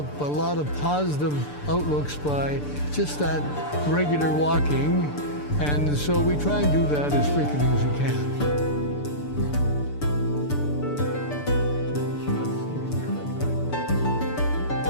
a lot of positive outlooks by just that regular walking. And so we try and do that as frequently as we can.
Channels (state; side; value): late; right; 6.8 ms